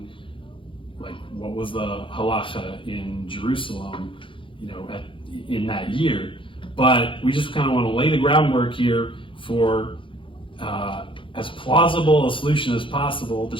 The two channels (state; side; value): late; right; 0.25 ms